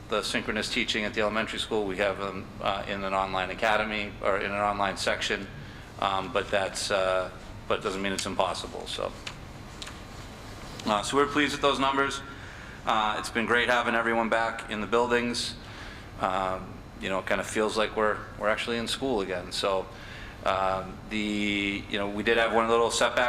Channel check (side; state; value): both; identical; correlation 1.00